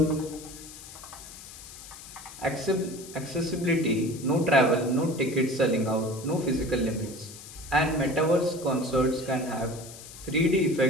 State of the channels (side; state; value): left; noise; hiss, 15 dB below the sound